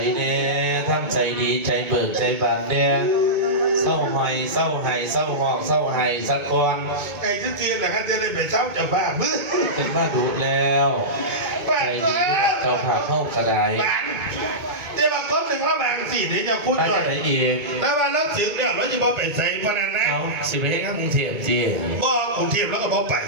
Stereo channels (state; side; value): late; left; 2.2 ms